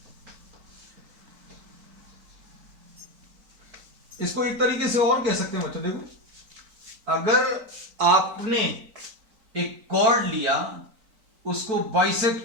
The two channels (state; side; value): late; left; 4.5 ms